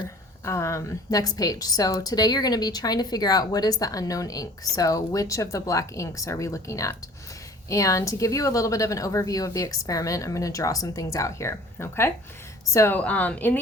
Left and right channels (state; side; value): normal; both; correlation 0.49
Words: next page. So today you're going to be trying to figure out what is the unknown ink. So which of the black inks are we looking at? And to give you a little bit of an overview of the experiment, I'm going to draw some things out here, okay? So in